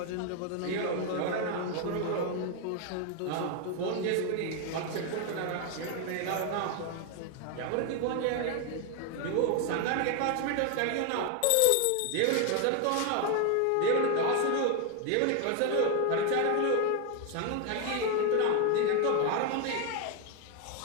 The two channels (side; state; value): both; different; correlation 0.01